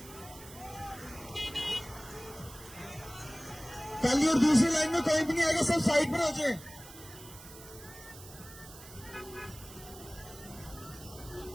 पहली और दूसरी लाइन में कोई भी नहीं आएगा, सब साइड पर हो जाए।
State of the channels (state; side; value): noise; right; hiss, 17 dB below the sound